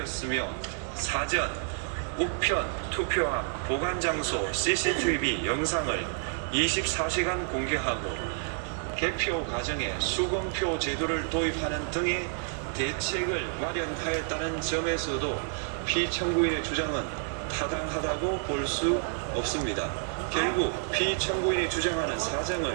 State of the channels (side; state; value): left; silent; 58 dB below the other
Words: 사전, 우편, 투표함, 보관 장소 CCTV 영상을 24시간 공개하고 개표 과정에 수검표 제도를 도입하는 등의 대책을 마련하였다는 점에서도 피청구인의 주장은 타당하다고 볼 수 없습니다. 결국 피청구인이 주장하는 사정을